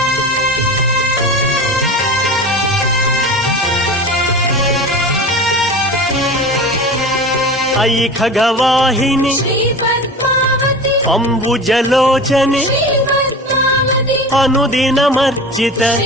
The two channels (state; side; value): normal; both; correlation 0.32